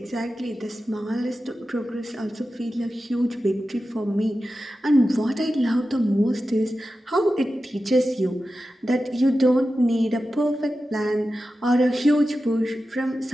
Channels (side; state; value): both; normal; correlation 0.93